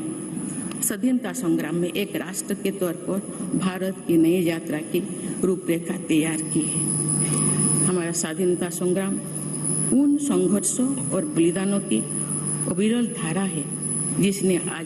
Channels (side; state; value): both; identical; correlation 1.00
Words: स्वाधीनता संग्राम में एक राष्ट्र के तौर पर भारत की नई यात्रा की रूपरेखा तैयार की है। हमारा स्वाधीनता संग्राम उन संघर्षों और बलिदानों की अविरल धारा है जिसने